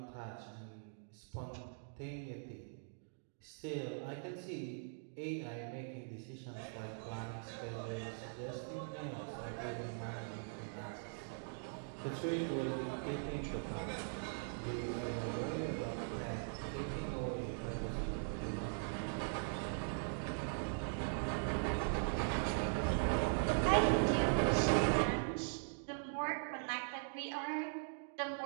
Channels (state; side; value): silent; left; digital silence